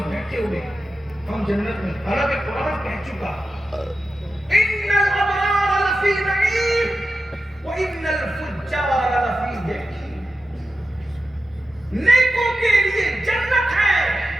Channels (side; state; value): both; normal; correlation 0.92